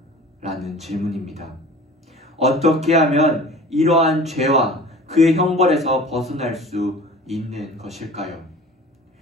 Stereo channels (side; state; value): both; normal; correlation 0.42